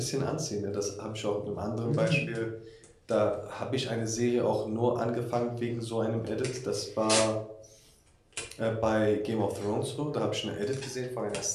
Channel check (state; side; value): identical; both; correlation 1.00